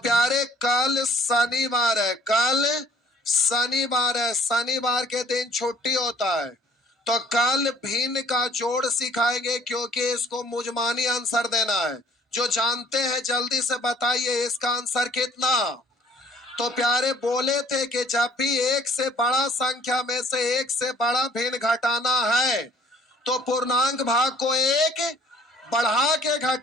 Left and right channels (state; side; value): normal; both; correlation 0.55